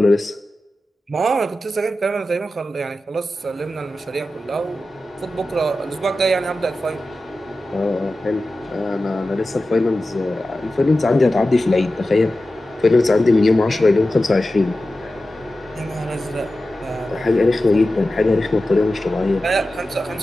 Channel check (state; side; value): normal; both; correlation 0.94